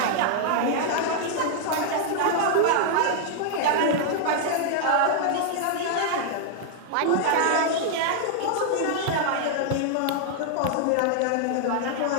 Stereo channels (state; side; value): different; both; correlation -0.01